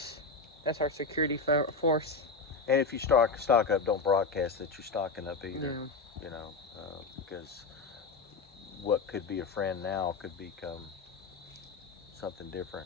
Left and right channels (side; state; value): right; quieter; 4.0 dB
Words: That's our security force. And if you stock up, don't broadcast that you're stocking up either. Yeah. You know, because what could be a friend now could become something different.